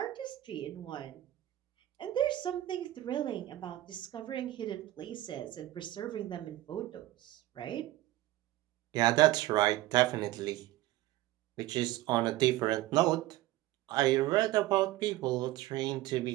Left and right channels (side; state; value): left; quieter; 16.2 dB